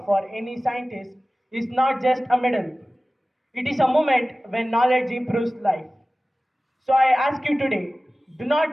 for any scientist is not just a medal. It is a moment when knowledge improves life. So I ask you today, do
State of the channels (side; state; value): both; normal; correlation 0.97